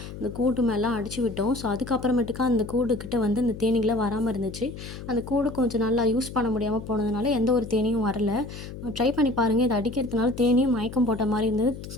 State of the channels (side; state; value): left; noise; hum, 11 dB below the sound